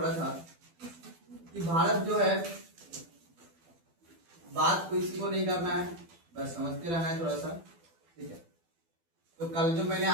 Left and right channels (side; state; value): left; late; 12 ms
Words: था कि भारत जो है, बात को इसी को नहीं करना है, बस समझते रहना है थोड़ा सा, ठीक है। तो कल जो मैंने